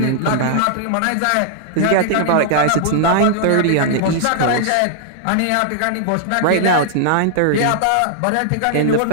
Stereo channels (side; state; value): both; different; correlation -0.01